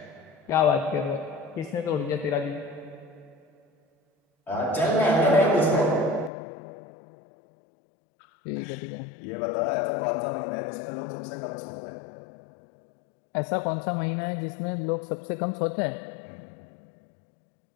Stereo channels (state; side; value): drops out; right; at 6.3 s